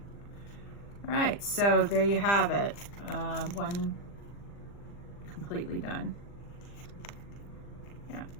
All right, so there you have it. One completely done. Yeah.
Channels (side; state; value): right; late; 40 ms